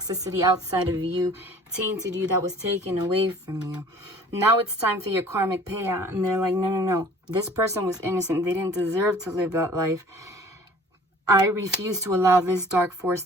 outside of you, tainted you, that was taken away from you. Now it's time for your karmic payout. And they're like, no. This person was innocent. They didn't deserve to live that life. I refuse to allow this dark force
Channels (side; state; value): both; normal; correlation 0.49